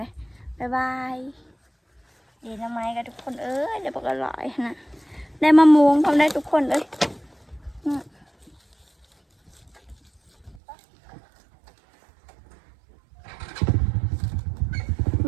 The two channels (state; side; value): drops out; left; at 10.6 s